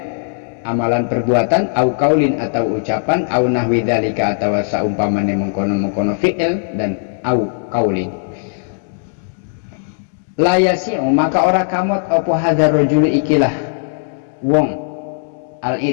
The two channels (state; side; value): silent; right; 68 dB below the other